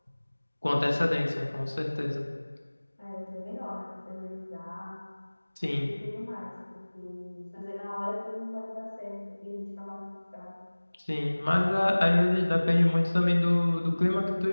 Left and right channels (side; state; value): both; inverted; correlation -1.00